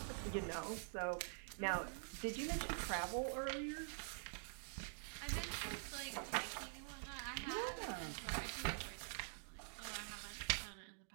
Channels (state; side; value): silent; left; digital silence